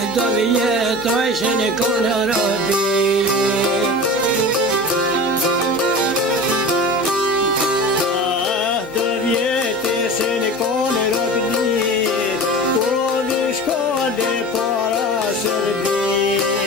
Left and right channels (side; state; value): both; normal; correlation 0.33